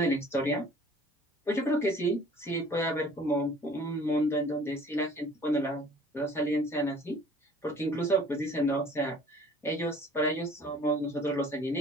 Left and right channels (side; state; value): both; normal; correlation 0.51